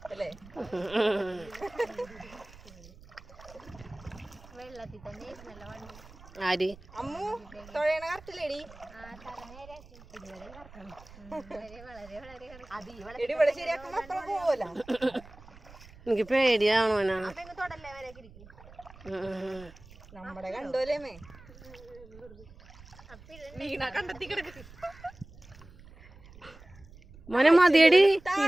അല്ലേ? വെള്ളത്തിൽ തന്നെ നല്ല വണ്ടി. ആര് അമ്മു തൊഴയണ കറക്റ്റില്ലേടി? ഇവിടെ ശരിയാക്കുമ്പോ അത്ര പോവല്ല. എനിക്ക് പേടിയാണോ നമ്മടെ കണ്ടോലേമേ വീണ കണ്ടെത്തി കിടക്ക്. മോനെ മതിയടി.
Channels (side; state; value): right; noise; rumble, 20 dB below the sound